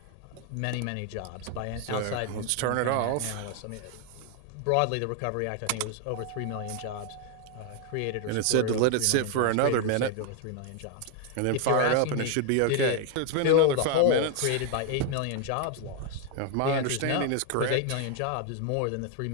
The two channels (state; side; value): different; both; correlation 0.01